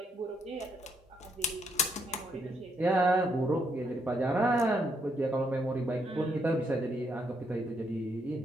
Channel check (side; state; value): both; normal; correlation 0.75